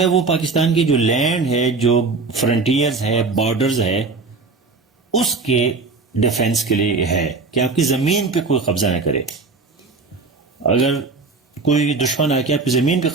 وہ پاکستان کی جو لینڈ ہے, جو فرنٹیئرز ہے, بارڈرز ہے, اس کے ڈیفenس کے لیے ہے کہ آپ کی زمین پہ کوئی قبضہ نہ کرے. اگر کوئی دشمن آ کے آپ کی زمین پہ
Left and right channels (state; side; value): quieter; left; 4.1 dB